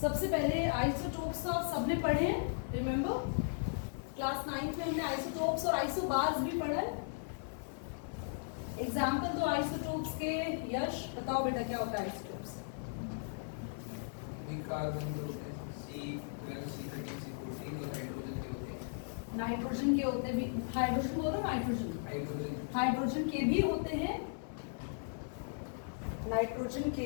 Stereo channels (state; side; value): silent; right; digital silence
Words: सबसे पहले आइसोटोप्स तो आप सबने पढ़े हैं, रिमेंबर क्लास 9th में हमने आइसोटोप्स और आइसोबार्स भी पढ़ा है। एग्जाम्पल दो आइसोटोप्स के। यश बताओ बेटा क्या होता है आइसोटोप्स? कार्बन के होते हैं C12, C13, C14 और हाइड्रोजन के होते हैं। नाइट्रोजन के होते भी, हाइड्रोजन बोलो नाइट्रोजन, हाइड्रोजन के भी होते हैं, नाइट्रोजन के